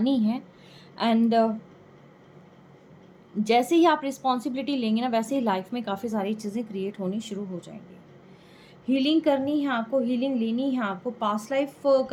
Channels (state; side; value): identical; both; correlation 1.00